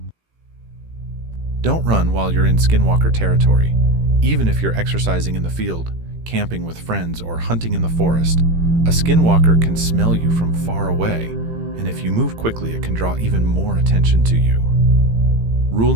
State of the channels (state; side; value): late; left; 18 ms